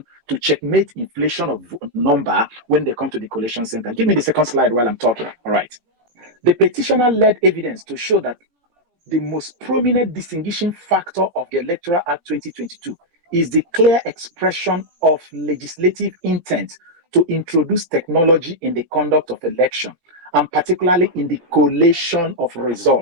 to checkmate inflation of number when they come to the collation center. Give me the second slide while I'm talking. All right. The petitioner led evidence to show that the most prominent distinguishing factor of the Electoral Act 2022 is the clear expression of legislative intent to introduce technology in the conduct of election, and particularly in the collation of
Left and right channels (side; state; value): left; late; 17 ms